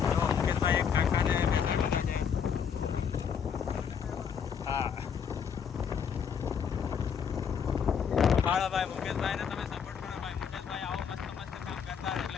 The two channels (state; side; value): quieter; right; 7.3 dB